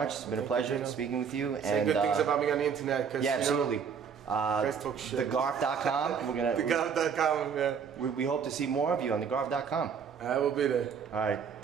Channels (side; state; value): left; quieter; 6.7 dB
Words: It's been a pleasure speaking with you. Say good things about me on the internet. Yeah, absolutely. Talk shit. TheGarf.com. We're gonna. TheGarf.com. Yeah. We hope to see more of you on TheGarf.com. I will be there. All right.